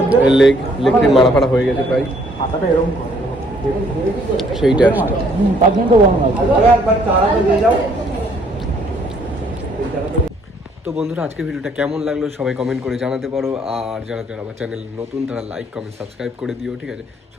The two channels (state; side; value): normal; both; correlation 0.64